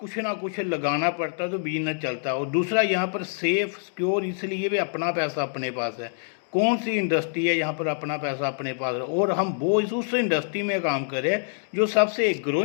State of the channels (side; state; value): right; silent; digital silence